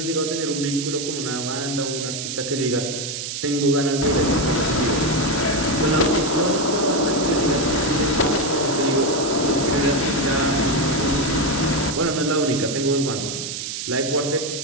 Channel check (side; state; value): right; noise; hiss, 5 dB below the sound